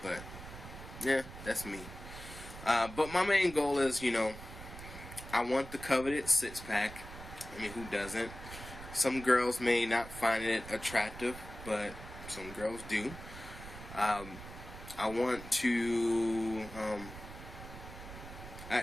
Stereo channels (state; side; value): noise; right; rumble, 13 dB below the sound